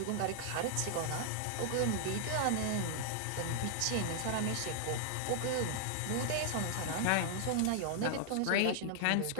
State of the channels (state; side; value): different; both; correlation -0.01